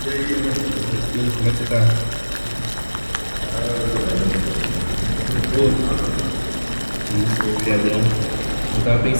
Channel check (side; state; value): both; inverted; correlation -1.00